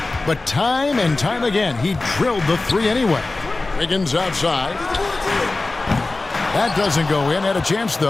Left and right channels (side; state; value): right; quieter; 3.3 dB